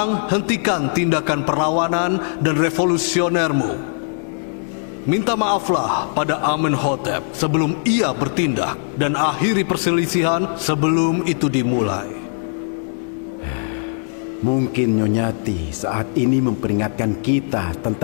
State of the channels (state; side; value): silent; right; 66 dB below the other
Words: hentikan tindakan perlawanan dan revolusionermu. Minta maaflah pada Amenhotep sebelum ia bertindak dan akhiri perselisihan sebelum itu dimulai. Mungkin Nyonyati saat ini memperingatkan kita